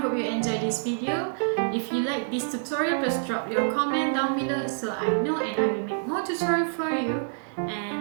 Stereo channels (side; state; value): left; silent; digital silence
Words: you enjoyed this video. If you like this tutorial, please drop your comment down below so I know and I will make more tutorial for you.